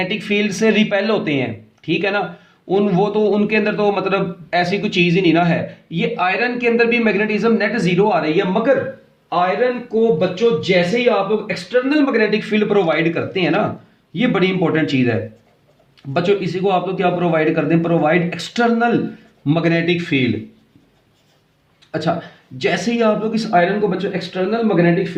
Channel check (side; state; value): both; identical; correlation 1.00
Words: फील्ड से रिपेल होते हैं, ठीक है ना, उनके अंदर तो मतलब ऐसी कोई चीज ही नहीं ना है। ये आयरन के अंदर भी मैग्नेटिज्म नेट जीरो आ रही है, मगर आयरन को बच्चों जैसे ही आप लोग एक्सटर्नल मैग्नेटिक फील्ड प्रोवाइड करते हैं ना, ये बड़ी इंपॉर्टेंट चीज है बच्चों, इसी को आप लोग क्या प्रोवाइड करते हैं, प्रोवाइड एक्सटर्नल मैग्नेटिक फील्ड। अच्छा, जैसे ही आप लोग इस आयरन को बच्चों एक्सटर्नल मैग्नेटिक